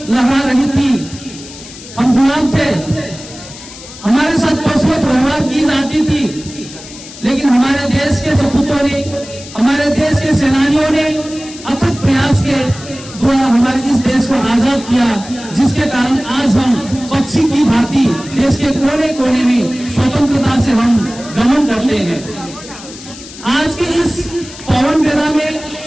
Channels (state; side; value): noise; left; hiss, 16 dB below the sound